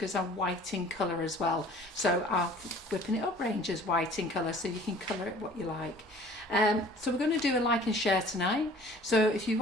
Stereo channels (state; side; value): normal; both; correlation 0.50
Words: are white in colour as well. So our whipping it up range is white in colour, so you can colour it what you like. So we're going to do a like and share tonight. So if you